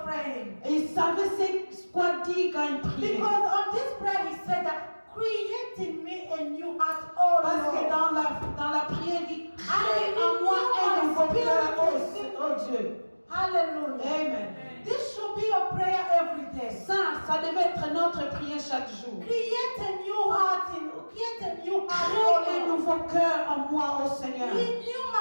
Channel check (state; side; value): inverted; both; correlation -1.00